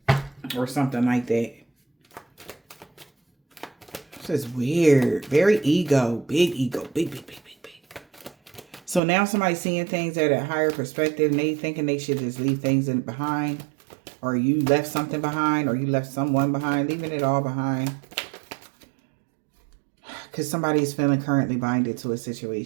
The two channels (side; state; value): left; drops out; at 9.0 s